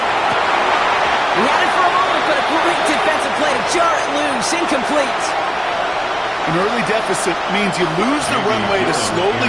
He had it for a moment, but a great defensive play to jar it loose. Incomplete. An early deficit means you lose the runway to slowly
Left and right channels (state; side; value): identical; both; correlation 1.00